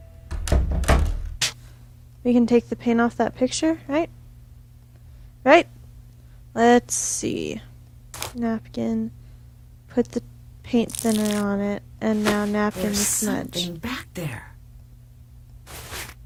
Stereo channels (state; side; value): identical; both; correlation 1.00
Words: We can take the paint off that picture, right? Right? Let's see. Napkin. Put the paint thinner on it. And now napkin There's to smudge. something back there.